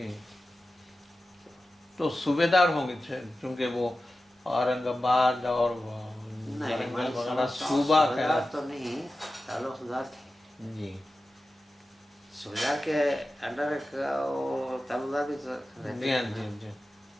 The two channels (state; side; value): normal; both; correlation 0.94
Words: تو صوبے دار ہوں گے چونکہ وہ اورنگ آباد اور ورنگل وغیرہ صوبہ کا تو نہیں, تعلقدار تھے. جی. صوبیدار کے انڈر تعلقدار بھی جی. ہاں. جی. جی.